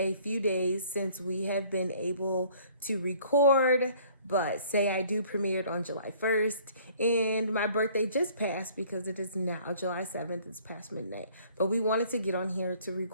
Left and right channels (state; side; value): inverted; both; correlation -0.56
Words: few days since we have been able to record, but Say I Do premiered on July 1st, and my birthday just passed because it is now July 7th, it's past midnight. But we wanted to get on here to